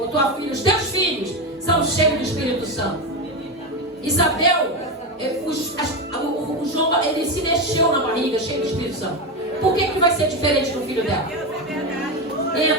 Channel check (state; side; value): normal; both; correlation 0.15